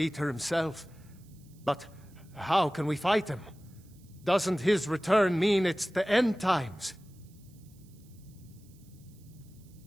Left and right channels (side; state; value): right; noise; hiss, 29 dB below the sound